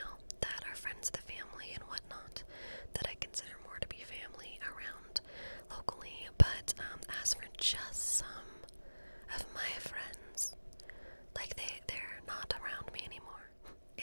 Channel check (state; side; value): inverted; both; correlation -1.00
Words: that are friends of the family and whatnot, that I consider more to be family around locally. But as for just some of my friends, like they're not around me anymore.